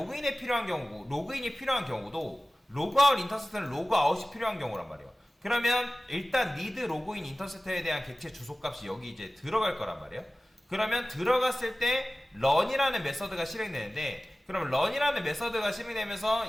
필요한 경우고, 로그인이 필요한 경우도 로그아웃 인터셉터는 로그아웃이 필요한 경우란 말이에요. 그러면 일단 need 로그인 인터셉터에 대한 객체 주소값이 여기 이제 들어갈 거란 말이에요. 그러면 들어갔을 때 run이라는 메서드가 실행되는데, 그럼 run이라는 메서드가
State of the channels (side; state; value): both; normal; correlation 0.97